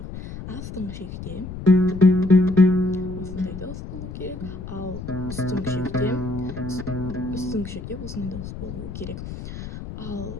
Астыңғы шекте осындай дауыс болу керек, ал үстіңгі шекте осындай дауыс болу керек.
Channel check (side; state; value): left; noise; rumble, 10 dB below the sound